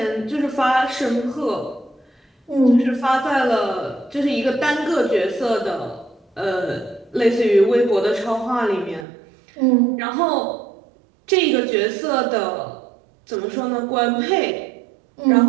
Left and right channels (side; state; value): left; drops out; at 9.1 s